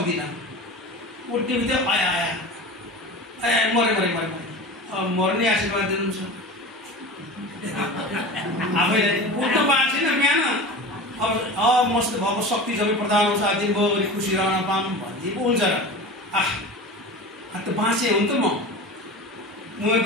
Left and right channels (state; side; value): normal; both; correlation 0.32